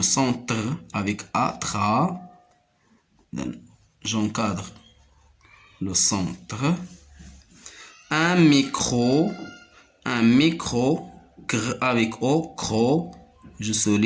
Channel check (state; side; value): identical; both; correlation 1.00